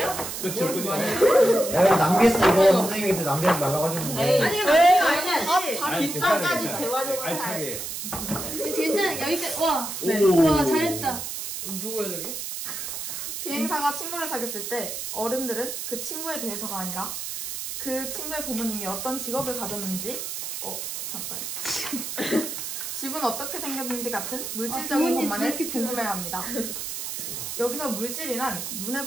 그쵸. 야, 왜 남겼어, 이거. 선생님한테 남기지 말라고 하셨는데. 아니, 뒷장까지 재활용을 할. 알차게. 괜찮아. 여기까지. 와. 네. 와, 잘했다. 누구야 저기? 비행사가 친구를 사귀었을 때 어른들은 그 친구에 대해서가 아니라 그 친구의 부모님이 어떤 직업을 가졌는지 집은 어떻게 생겼는지 같은 물질적인 것만을 궁금해합니다. 여기서 물질이란 눈에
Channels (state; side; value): noise; right; hiss, 6 dB below the sound